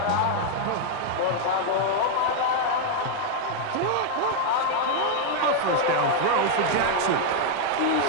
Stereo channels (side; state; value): both; different; correlation 0.00